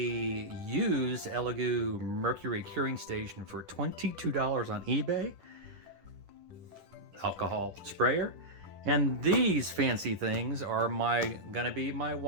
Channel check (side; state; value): left; late; 10 ms